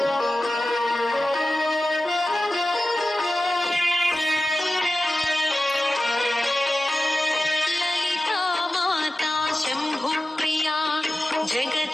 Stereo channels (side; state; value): both; normal; correlation 0.94